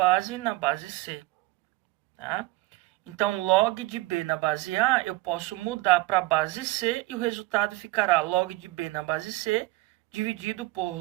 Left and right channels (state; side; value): quieter; left; 20.2 dB